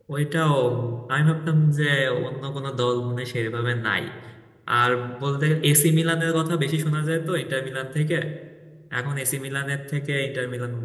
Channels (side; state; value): both; identical; correlation 1.00